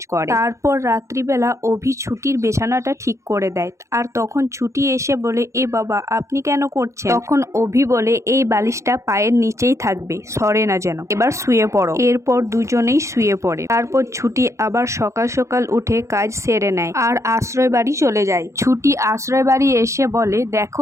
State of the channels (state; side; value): late; left; 0.14 ms